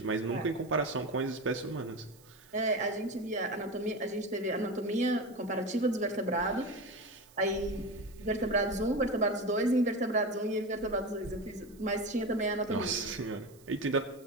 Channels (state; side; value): noise; right; hiss, 26 dB below the sound